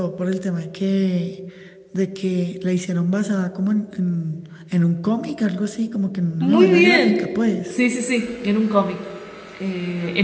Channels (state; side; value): identical; both; correlation 1.00